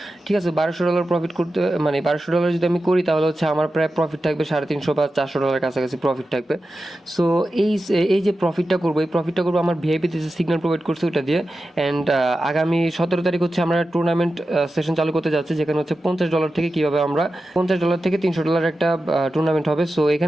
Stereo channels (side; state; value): both; normal; correlation 0.92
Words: ঠিক আছে, $1200 প্রফিট করতে, মানে $1200 যদি আমি করি তাহলে হচ্ছে আমার প্রায় প্রফিট থাকবে $350 বা $400 কাছাকাছি প্রফিট থাকবে। সো এই এই যে প্রফিটটা করবো, এই প্রফিটটা করবো আমার ভিআইপিতে যে সিগন্যাল প্রোভাইড করছে ওটা দিয়ে। অ্যান্ড আগামী 17 তারিখ হচ্ছে আমরা টুর্নামেন্ট সেশন চালু করতে যাচ্ছি, যেখানে হচ্ছে $50 থেকে কীভাবে আমরা $50 থেকে $300 একটা টুর্নামেন্ট হবে। সো